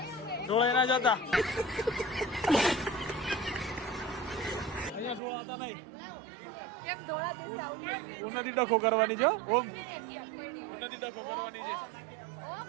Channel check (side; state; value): left; drops out; at 5.2 s